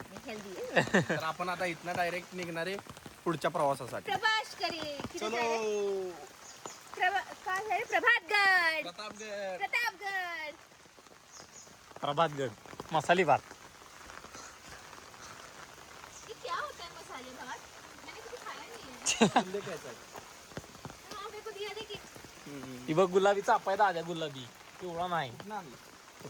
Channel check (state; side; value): identical; both; correlation 1.00